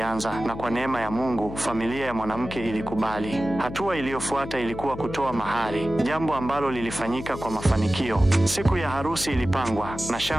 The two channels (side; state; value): left; noise; hum, 10 dB below the sound